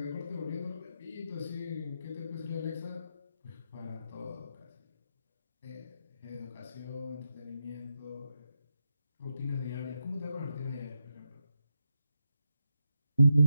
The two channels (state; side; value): inverted; both; correlation -0.86